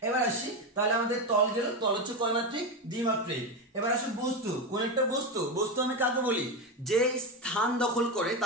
এবার আসি, তাহলে আমাদের তল গেল, তল হচ্ছে কয়মাত্রিক? দ্বিমাত্রিক। এবার আসি বস্তু, কোন একটা বস্তু, বস্তু আমি কাকে বলি? যে স্থান দখল করে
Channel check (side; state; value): both; normal; correlation 0.14